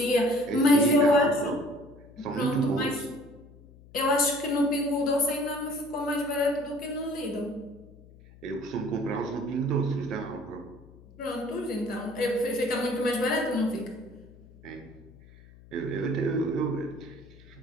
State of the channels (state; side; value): noise; left; hum, 22 dB below the sound